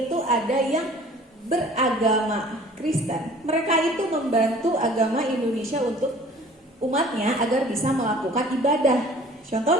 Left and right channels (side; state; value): both; normal; correlation 0.49